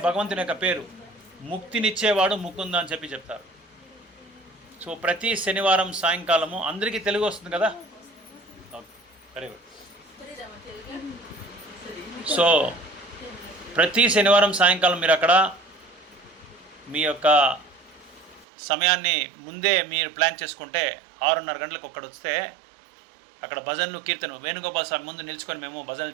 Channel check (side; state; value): left; drops out; at 18.4 s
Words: భగవంతుని యొక్క పేరు, ముక్తినిచ్చేవాడు ముకుంద అని చెప్పి చెప్తారు. సో ప్రతి శనివారం సాయంకాలము, అందరికీ తెలుగు వస్తుంది కదా? Very good. సో ప్రతి శనివారం సాయంకాలం మీరు అక్కడ మీ యొక్క సమయాన్ని ముందే మీరు ప్లాన్ చేసుకుంటే 6:30 గంటలకు ఒక్కడ వస్తే అక్కడ భజనలు, కీర్తన, వేణుగోపాల స్వామి ముందు నిలుచుకొని మేము భజనలు